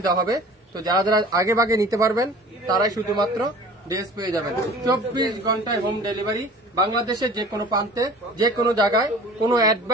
দেওয়া হবে। তো যারা যারা আগে ভাগে নিতে পারবেন তারাই শুধুমাত্র ড্রেস পেয়ে যাবেন। 24 ঘন্টায় হোম ডেলিভারি, বাংলাদেশের যে কোনো প্রান্তে যে কোনো জায়গায়, কোনো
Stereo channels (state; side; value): normal; both; correlation 0.44